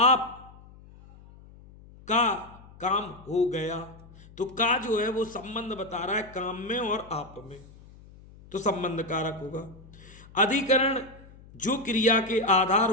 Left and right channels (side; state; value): left; noise; hum, 22 dB below the sound